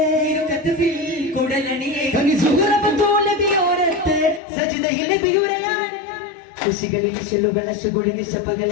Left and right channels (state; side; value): drops out; right; at 4.4 s